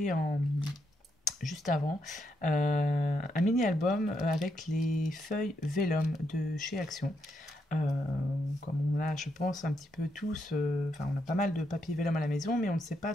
juste avant. Un mini-album avec les feuilles Vellum de chez Action. Comme on a, je pense, un petit peu tous, on a pas mal de papier Vellum à la maison, mais on ne sait pas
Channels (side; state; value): both; normal; correlation 0.80